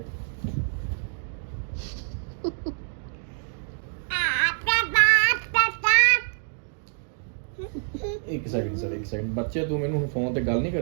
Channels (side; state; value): left; silent; digital silence